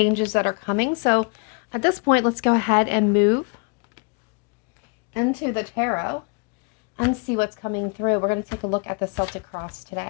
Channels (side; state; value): right; quieter; 33.0 dB